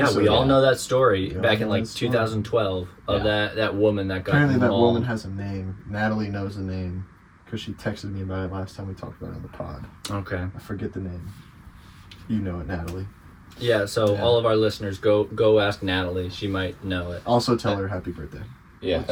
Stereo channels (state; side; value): identical; both; correlation 1.00